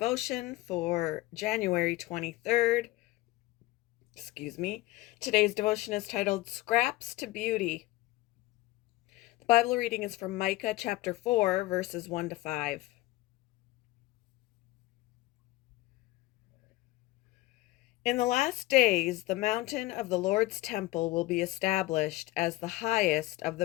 for January 23rd. Excuse me. Today's devotion is titled Scraps to Beauty. The Bible reading is from Micah chapter 4, verses 1 to 5. In the last days, the mountain of the Lord's temple will be established as the highest of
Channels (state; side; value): quieter; right; 18.8 dB